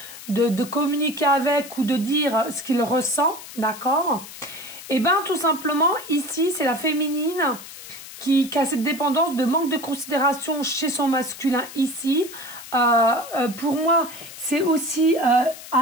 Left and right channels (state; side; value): noise; left; hiss, 14 dB below the sound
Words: de communiquer avec ou de dire ce qu'il ressent, d'accord? Et bien, tout simplement, ici, c'est la féminine qui a cette dépendance de manque de considération chez son masculin ici. Pour moi, c'est aussi